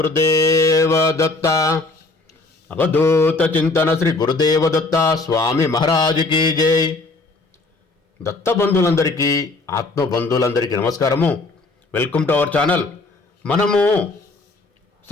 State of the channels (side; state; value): right; quieter; 3.3 dB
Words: దత్త. అవధూత చింతన శ్రీ గురుదేవ దత్త స్వామి మహారాజుకి జై. దత్త బంధువులందరికీ, ఆత్మ బంధువులందరికీ నమస్కారము. Welcome to our channel. మనము